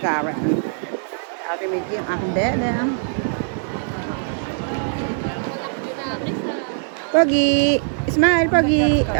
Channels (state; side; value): silent; left; 65 dB below the other